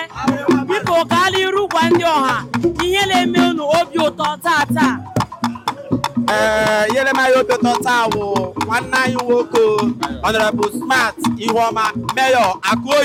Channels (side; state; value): both; identical; correlation 1.00